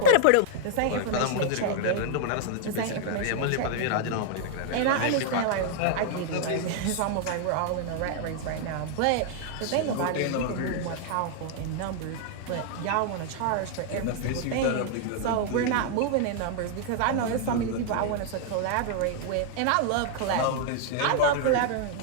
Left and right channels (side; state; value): both; different; correlation 0.00